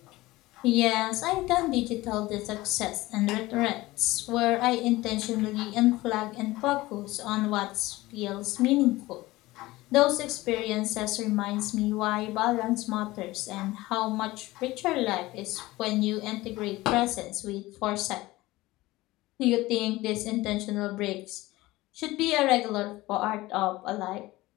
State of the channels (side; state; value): right; quieter; 19.0 dB